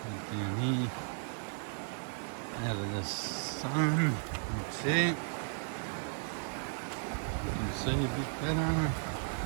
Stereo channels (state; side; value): silent; left; digital silence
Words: Down here, out of the sun, that's it. You can see a bit better.